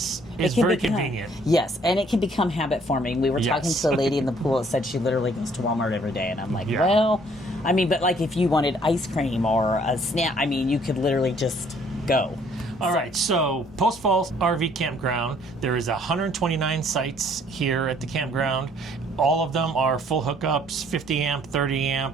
very convenient. Yes, and it can become habit forming. We were talking to a lady in the pool that said she literally goes to Walmart every day, and I'm like, well, I mean, but like if you wanted ice cream or a snack, I mean, you could literally just go. All right, so Post Falls RV Campground, there is 129 sites here at the campground. All of them are full hookups, 50 amp, 30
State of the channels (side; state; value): both; normal; correlation 0.61